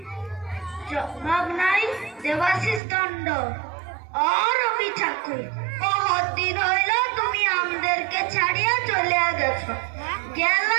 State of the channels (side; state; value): left; drops out; at 2.8 s